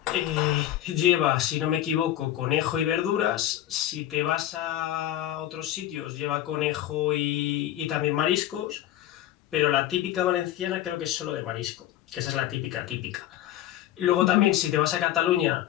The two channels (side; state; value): right; quieter; 12.9 dB